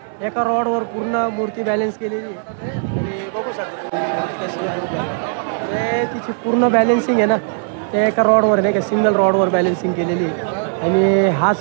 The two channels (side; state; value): left; silent; digital silence